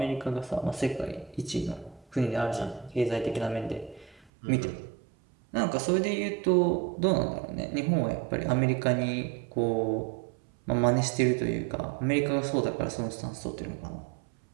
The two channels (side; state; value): left; drops out; at 4.2 s